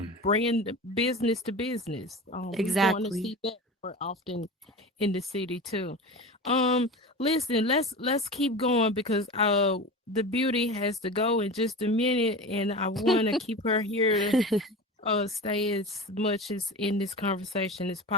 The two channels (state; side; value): normal; both; correlation 0.30